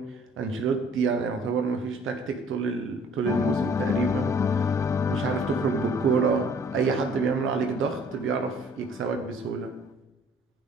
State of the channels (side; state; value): both; normal; correlation 0.56